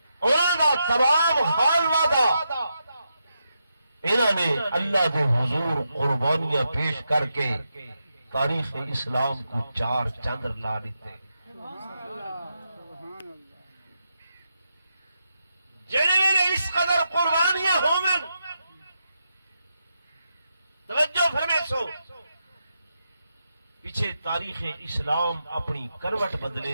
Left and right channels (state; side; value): inverted; both; correlation -0.85